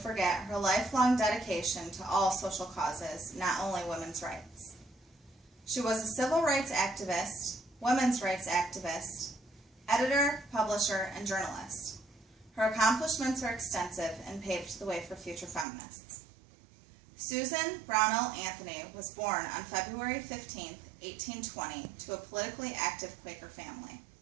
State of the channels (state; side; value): drops out; left; at 15.7 s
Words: her lifelong dedication to all social causes, not only women's rights. She was a civil rights activist, women's rights activist, editor, publisher, and journalist. Her accomplishments are extensive and paved the way for future feminists. Susan Brownell Anthony was born on February 15, 1820, to a politically active Quaker family.